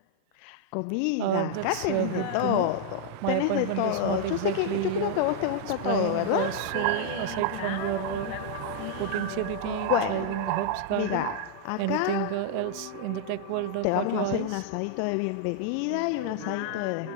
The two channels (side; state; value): both; different; correlation -0.01